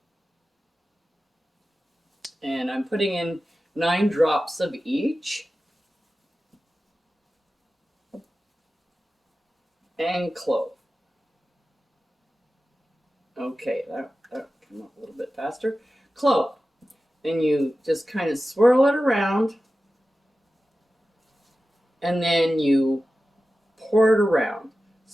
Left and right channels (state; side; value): normal; both; correlation 0.94